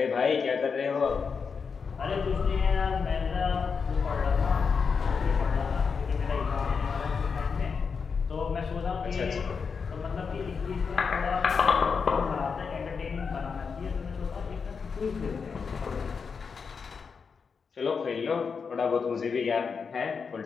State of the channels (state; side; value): quieter; right; 5.6 dB